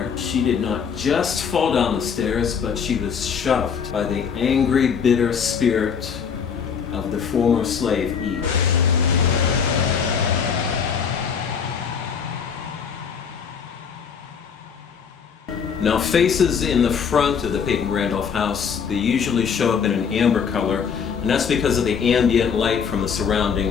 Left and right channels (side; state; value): right; quieter; 6.7 dB